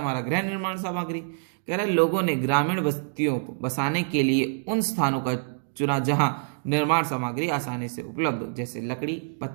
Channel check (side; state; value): left; silent; digital silence